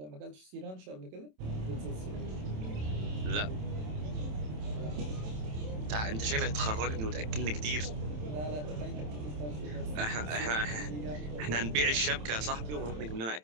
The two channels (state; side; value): late; left; 27 ms